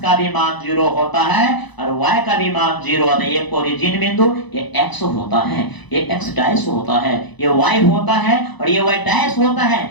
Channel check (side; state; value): right; late; 1.0 ms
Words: का भी मान 0 होता है और y का भी मान 0 होता है। ये ओरिजिन बिंदु ये x होता है, ये x डैश होता है, ये y होता है और ये y डैश होता है।